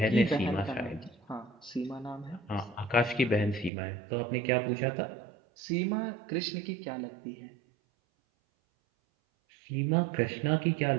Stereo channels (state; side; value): drops out; left; at 3.7 s